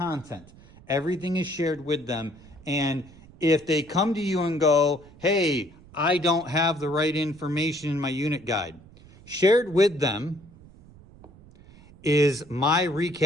Everything is shared with them. And if they come to you and go, hey, I don't have the right information in my unit guide, shared with them is my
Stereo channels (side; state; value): right; noise; rumble, 23 dB below the sound